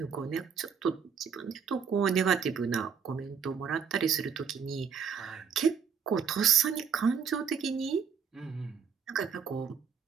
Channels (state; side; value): quieter; left; 6.8 dB